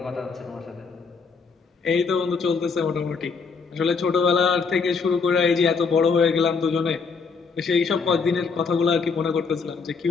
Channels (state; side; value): quieter; right; 5.0 dB